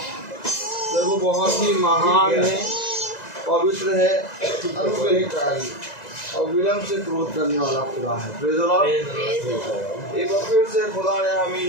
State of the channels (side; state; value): right; late; 2.0 ms